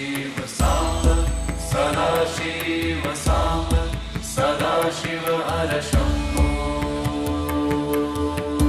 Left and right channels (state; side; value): identical; both; correlation 1.00